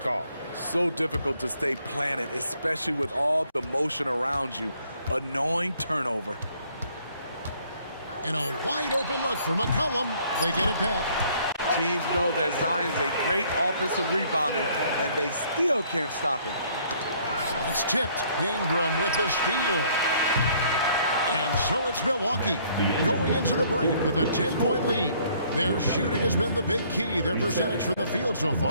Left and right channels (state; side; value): inverted; both; correlation -0.62